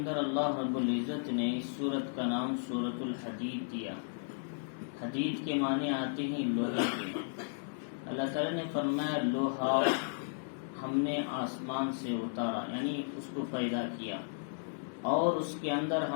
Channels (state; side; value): silent; right; digital silence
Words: اللہ رب العزت نے اس سورت کا نام سورۃ الحدید دیا. حدید کے معنی آتے ہیں لوہے کے. اللہ تعالیٰ نے فرمایا لوہا ہم نے آسمان سے اتارا، یعنی اس کو پیدا کیا، اور اس کے اندر